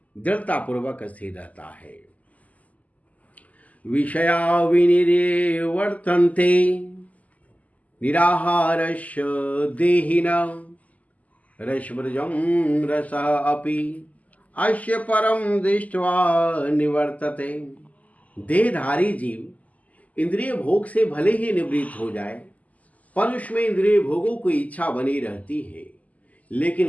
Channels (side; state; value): right; late; 0.074 ms